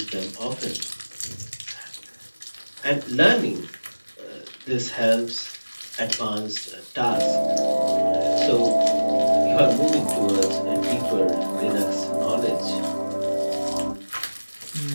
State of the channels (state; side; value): inverted; both; correlation -1.00